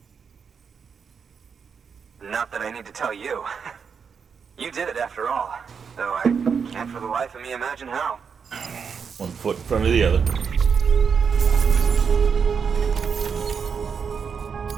Not that I need to tell you. You did it after all. Though I can't for the life of me imagine how. One foot in front of the other.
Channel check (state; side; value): quieter; left; 6.3 dB